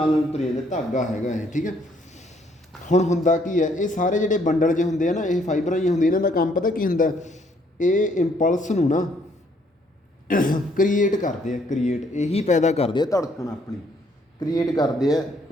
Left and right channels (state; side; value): normal; both; correlation 0.67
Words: ਤੁਰ ਜਾਂਦਾ, ਧਾਗਾ ਹੈਗਾ ਇਹ, ਠੀਕ ਹੈ। ਹੁਣ ਹੁੰਦਾ ਕੀ ਹੈ, ਇਹ ਸਾਰੇ ਜਿਹੜੇ ਬੰਡਲ ਜਿਹੇ ਹੁੰਦੇ ਆ ਨਾ, ਇਹ ਫਾਈਬਰਾਂ ਹੀ ਹੁੰਦੀਆਂ, ਇਹਨਾਂ ਦਾ ਕੰਮ ਪਤਾ ਕੀ ਹੁੰਦਾ, ਇਹ ਇੰਪਲਸ ਨੂੰ ਨਾ ਕ੍ਰੀਏਟ ਕਰਦੇ ਆ, ਕ੍ਰੀਏਟ ਇਹੀ ਪੈਦਾ ਕਰਦੇ ਆ, ਧੜਕਣ ਆਪਣੀ ਕ੍ਰੀਏਟ ਕਰਦੇ ਆ